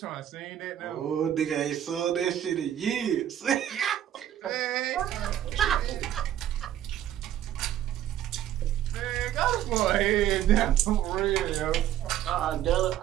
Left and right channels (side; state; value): left; quieter; 11.5 dB